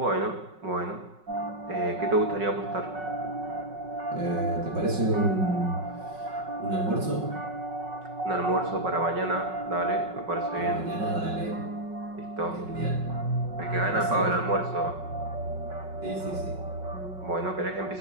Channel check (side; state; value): left; late; 5.4 ms